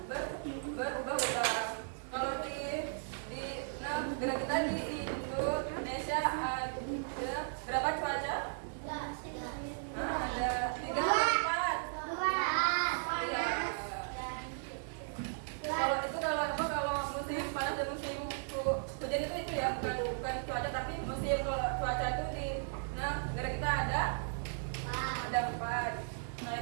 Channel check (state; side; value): silent; left; 54 dB below the other